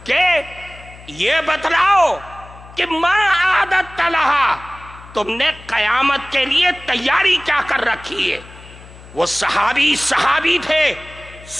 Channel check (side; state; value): left; noise; hum, 19 dB below the sound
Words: کہ یہ بتلاؤ کہ ما اعددت لہا، تم نے قیامت کے لیے تیاری کیا کر رکھی ہے؟ وہ صحابی تھے،